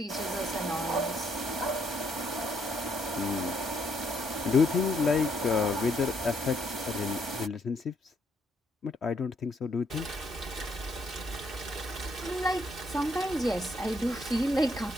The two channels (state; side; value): normal; both; correlation 0.72